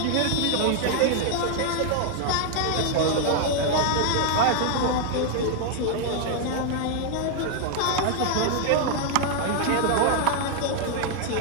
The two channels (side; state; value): both; different; correlation 0.00